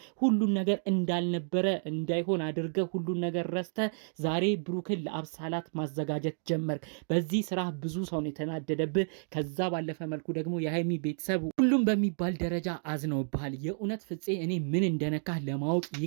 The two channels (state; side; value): silent; left; 57 dB below the other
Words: ሁሉን ነገር እንዳልነበረ እንዳይሆን አድርገህ ሁሉን ነገር ረስተህ ዛሬ ብሩክን ለአብሳላት ማዘጋጀት ጀመርክ። በዚህ ስራ ብዙ ሰው ነው የተናደደብህ። ከዛ ባለፈ መልኩ ደግሞ የሀይሚ ቤተሰብ ሁሉም በሚባል ደረጃ አዝነውብሃል። የእውነት ፍፄ እኔ ምን እንደነካህ ለማወቅ